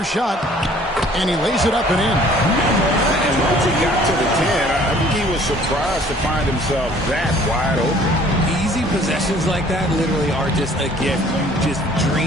shot. And he lays it up and in. And once he got to the 10, I think he was surprised to find himself that wide open. Easy possessions like that literally are just a gift. You just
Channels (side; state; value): both; normal; correlation 0.55